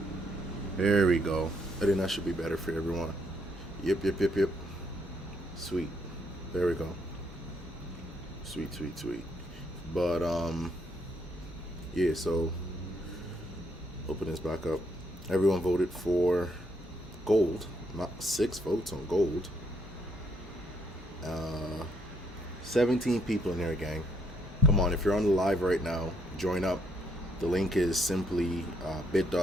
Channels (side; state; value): both; normal; correlation 0.72